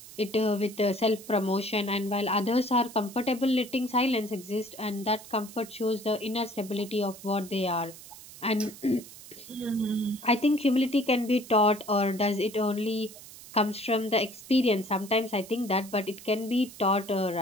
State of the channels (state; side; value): noise; right; hiss, 17 dB below the sound